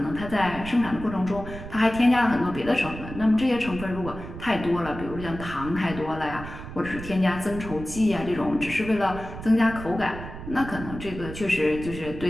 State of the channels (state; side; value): noise; right; rumble, 11 dB below the sound